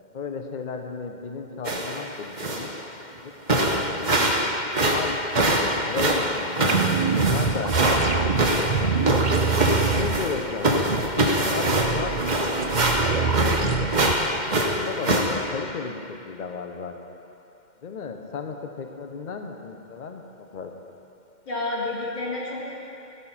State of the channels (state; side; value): late; right; 2.1 ms